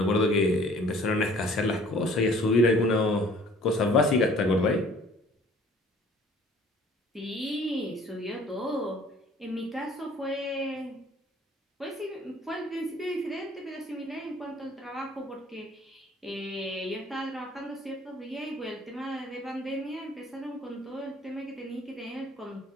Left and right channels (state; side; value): normal; both; correlation 0.54